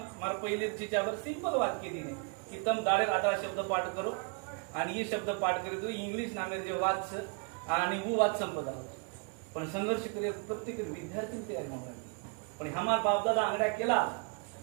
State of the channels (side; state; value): left; quieter; 34.5 dB